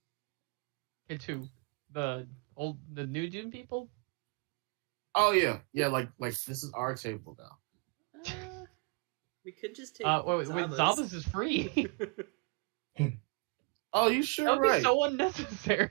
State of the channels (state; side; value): quieter; left; 31.3 dB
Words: Okay, to the new Dune people. Oh yeah, like this is our table now. We could just take wait, Zaba's is free. Oh, you That sure would be right? so